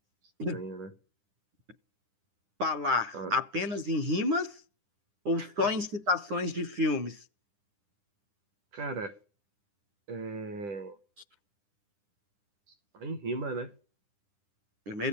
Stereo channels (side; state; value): left; late; 10 ms